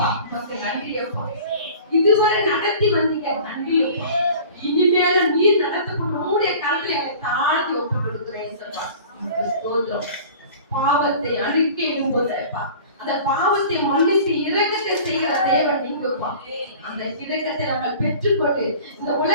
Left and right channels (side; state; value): both; inverted; correlation -0.43